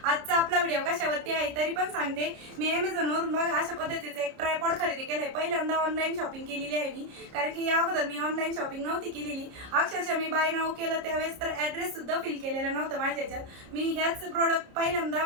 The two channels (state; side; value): late; left; 30 ms